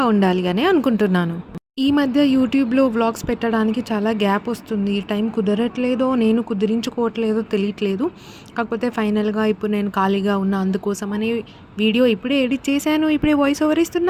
అనే అనుకుంటున్నాను. ఈ మధ్య యూట్యూబ్‌లో వ్లాగ్స్ పెట్టడానికి చాలా గ్యాప్ వస్తుంది. టైం కుదరట్లేదో, నేను కుదిరించుకోవట్లేదో తెలియట్లేదు. కాకపోతే ఫైనల్‌గా ఇప్పుడు నేను ఖాళీగా ఉన్నా. అందుకోసమని వీడియో ఇప్పుడే ఎడిట్ చేశాను. ఇప్పుడే వాయిస్ ఓవర్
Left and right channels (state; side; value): identical; both; correlation 1.00